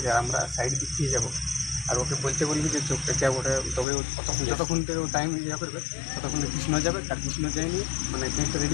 আর আমরা সাইড দিক দিয়ে যাবো, আর ওকে বলতে বলবি যে চোখটা কে ওটা, তবে যতক্ষণ থেকে ও টাইম ইয়ে করবে ততক্ষণে কৃষ্ণ যাবে। আর কৃষ্ণ যায়নি মানে কেকটা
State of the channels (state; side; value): drops out; right; at 3.9 s